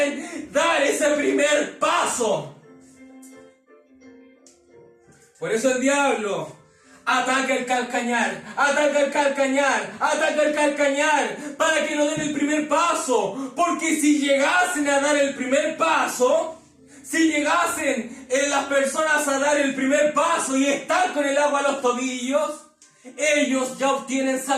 dar ese primer paso. Por eso el diablo ataca el calcañar, para que no den el primer paso. Porque si llegasen a dar el primer paso, si llegasen las personas a dar el primer paso y están con el agua a los tobillos, ellos ya obtienen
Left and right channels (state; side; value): identical; both; correlation 1.00